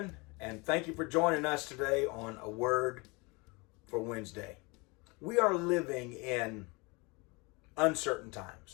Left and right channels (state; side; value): quieter; right; 27.5 dB